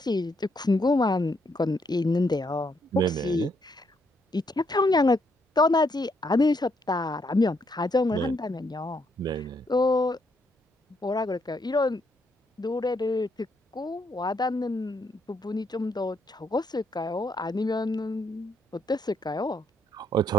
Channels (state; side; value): normal; both; correlation 0.74